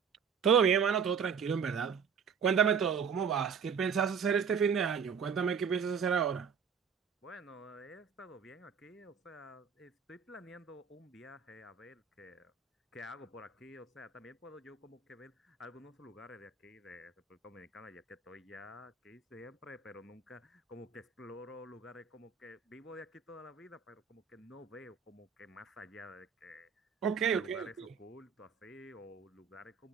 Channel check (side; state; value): left; quieter; 6.6 dB